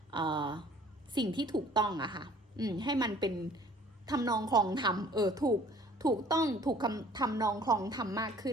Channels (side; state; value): both; normal; correlation 0.53